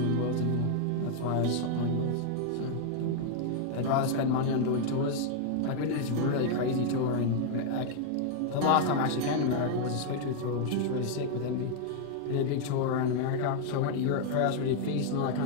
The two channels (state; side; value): different; both; correlation 0.00